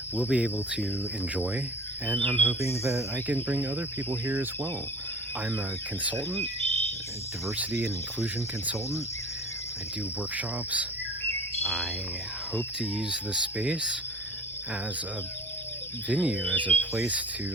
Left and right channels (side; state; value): both; normal; correlation 0.42